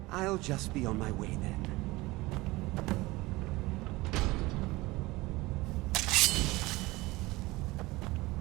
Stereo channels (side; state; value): left; quieter; 20.9 dB